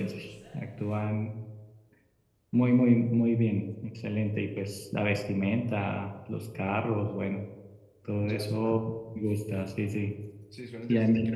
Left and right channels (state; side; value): identical; both; correlation 1.00